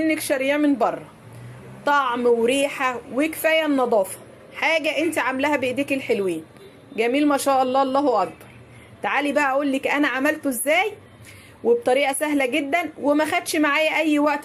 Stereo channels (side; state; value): both; identical; correlation 1.00